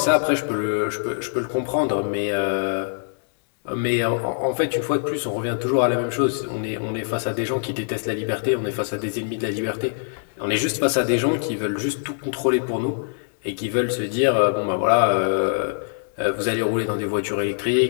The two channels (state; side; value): silent; right; digital silence